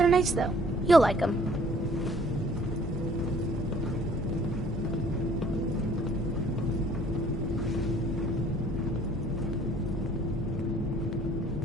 nice, though. You'll like them.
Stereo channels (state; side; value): normal; both; correlation 0.57